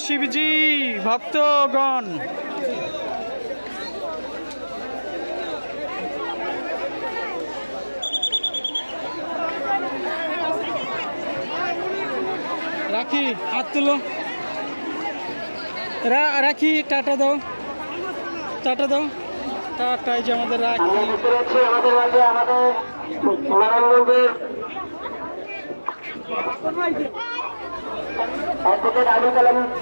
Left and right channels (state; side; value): inverted; both; correlation -1.00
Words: শিবজি ভক্তগণ। রাখি হাত তুলো, রাখি টাটা দাও, টাটা দাও, টাটাই যে আমাদের রাখি। আমাদের মাঝে আমাদের নারায়ণগঞ্জের অ্যাডভোকেট আবুল কালাম